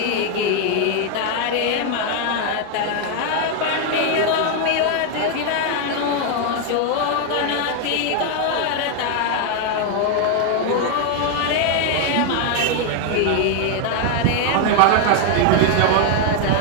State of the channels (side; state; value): both; different; correlation 0.00